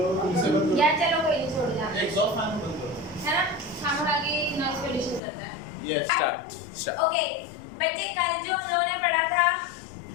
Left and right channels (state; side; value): drops out; right; at 5.2 s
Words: इसे बंद या चलो कोई नहीं, छोड़ दो एग्जॉस्ट फैन बंद करो। है ना, खाना खा के नॉइज पोल्यूशन करता है। Yes start. ओके बच्चे, कल जो हम लोगों ने पढ़ा था,